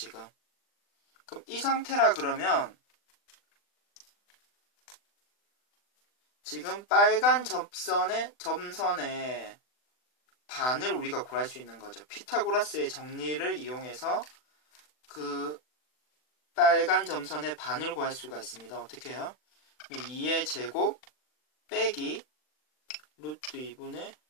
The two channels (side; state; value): right; late; 40 ms